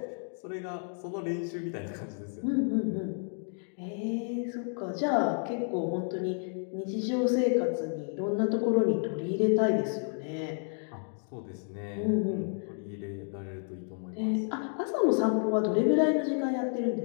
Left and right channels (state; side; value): silent; right; 57 dB below the other